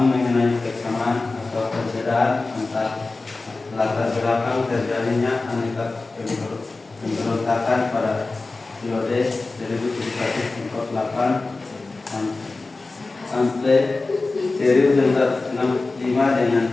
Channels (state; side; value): quieter; right; 3.5 dB